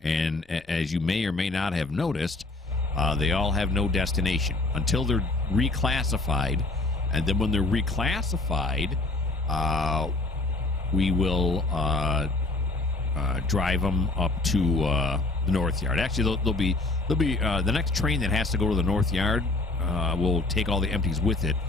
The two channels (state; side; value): quieter; right; 3.1 dB